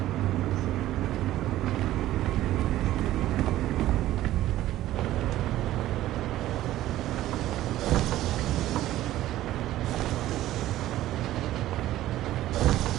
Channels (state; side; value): quieter; left; 14.5 dB